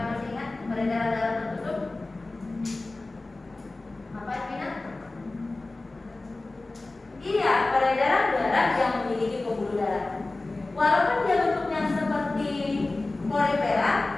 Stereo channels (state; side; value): quieter; right; 3.1 dB